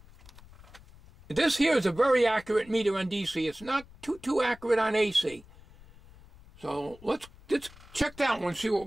This here is a very accurate meter on DC. It's not too accurate on AC. So let's check that one, see what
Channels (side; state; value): left; noise; rumble, 22 dB below the sound